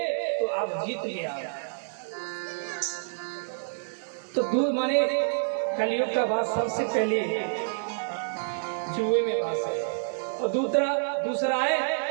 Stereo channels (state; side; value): silent; left; 59 dB below the other